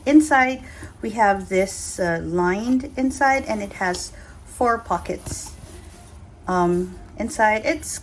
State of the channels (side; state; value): both; identical; correlation 1.00